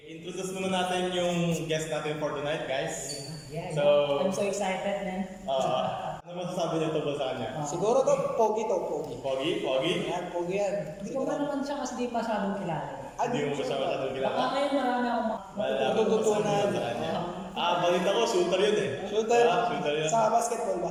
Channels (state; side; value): identical; both; correlation 1.00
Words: muna natin yung guest natin for tonight, guys. Yeah, So, I'm so excited, man. Ano masasabi niyo tungkol sa kanya? Siguro to, pogi to, pogi. Pogi? Pogi? Yan, pogi yan. Hindi ko pa naman siya kasi di masyadong kilala. Hindi mo masyadong Baka kilala. ngayon marami akong Matututunan. sa kanya. Balita ko, shooter yun eh. Shooter? Shooter yun. Sa basketball ba?